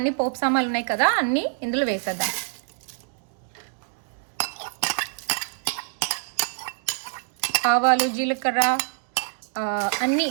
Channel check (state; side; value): silent; left; 59 dB below the other